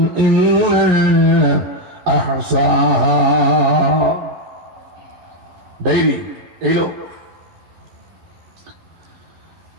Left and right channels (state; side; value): late; left; 11 ms